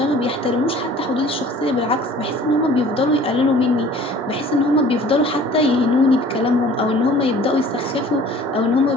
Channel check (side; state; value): both; normal; correlation 0.49